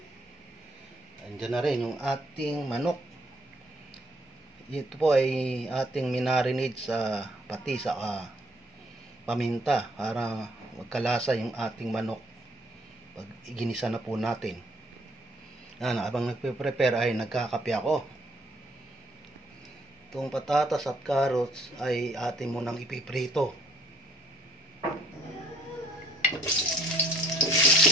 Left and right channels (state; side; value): normal; both; correlation 0.63